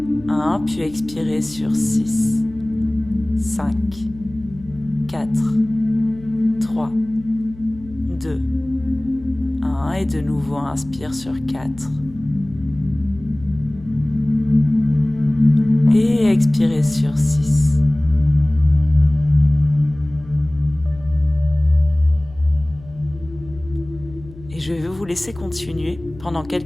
1 puis expirer sur 6, 5, 4, 3, 2, 1 et de nouveau inspire sur 4 et expirez sur 6. Et je vais vous laisser continuer pendant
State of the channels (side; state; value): left; noise; hum, 19 dB below the sound